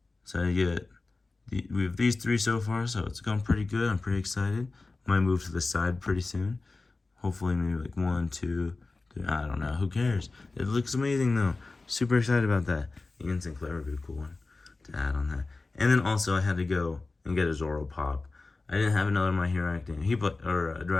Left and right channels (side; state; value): right; quieter; 3.5 dB